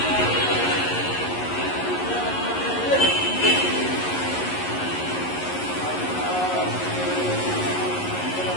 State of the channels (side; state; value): right; late; 11 ms